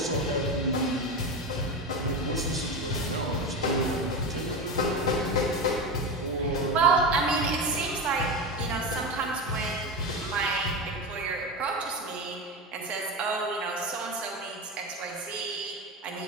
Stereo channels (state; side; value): normal; both; correlation 0.20